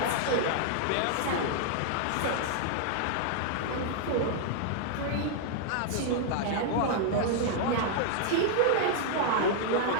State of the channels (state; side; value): different; both; correlation -0.01